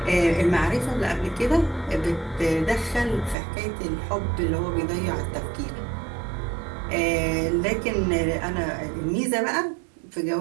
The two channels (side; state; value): left; drops out; at 3.4 s